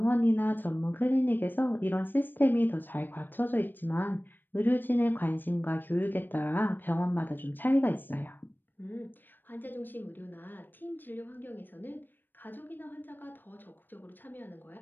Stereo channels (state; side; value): late; right; 0.093 ms